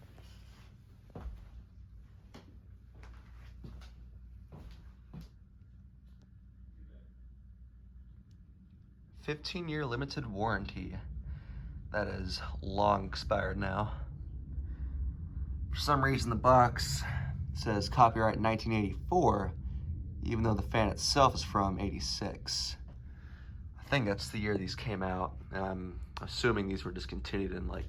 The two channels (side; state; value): both; identical; correlation 1.00